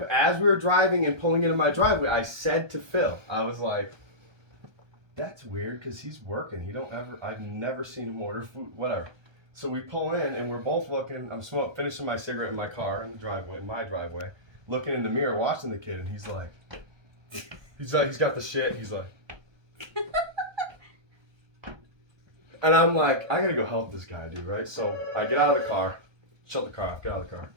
we were driving and pulling into my driveway, I said to Phil, I was like, "That's weird because he's working. I've never seen him order food. Whatever." So we pull in and we're both looking. I'm finishing my cigarette in my car in my driveway, looking in the mirror, watching the kid, and he's got the shit. He's like, and I'm like, I gotta go help this guy, dude, right? So I get out of the car, shut the car off, get out of the car.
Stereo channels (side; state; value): left; late; 1.3 ms